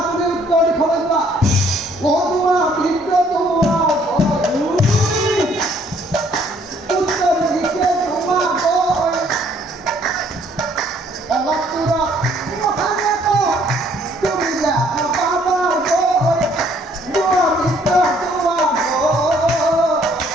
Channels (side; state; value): both; normal; correlation 0.63